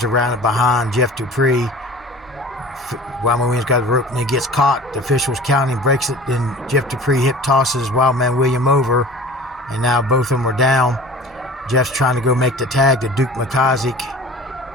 are rounded behind Jeff Dupree. Wildman Williams got the rope and he gets caught. The official's counting, breaks it, then Jeff Dupree hip tosses Wildman Williams over, and now both of them are down. Jeff's trying to go make the tag to Duke McCosick,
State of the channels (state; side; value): noise; right; hum, 28 dB below the sound